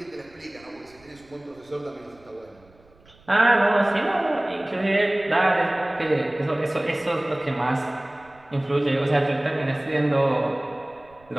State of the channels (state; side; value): noise; right; rumble, 29 dB below the sound